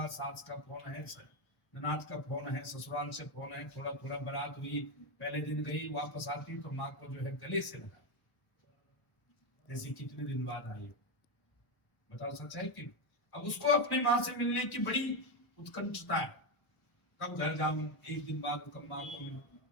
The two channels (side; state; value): right; late; 1.0 ms